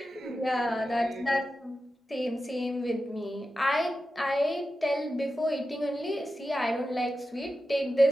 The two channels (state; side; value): normal; both; correlation 0.92